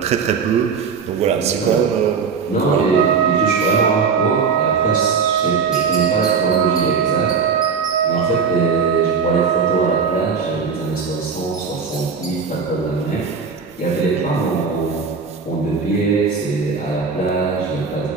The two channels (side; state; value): left; quieter; 5.6 dB